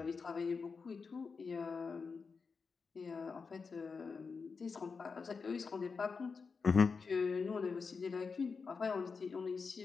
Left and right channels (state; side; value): quieter; right; 5.0 dB